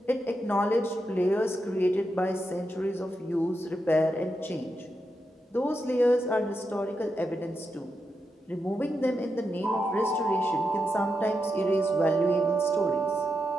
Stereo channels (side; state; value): both; normal; correlation 0.86